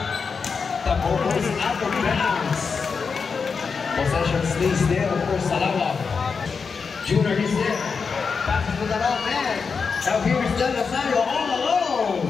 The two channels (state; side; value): quieter; right; 5.4 dB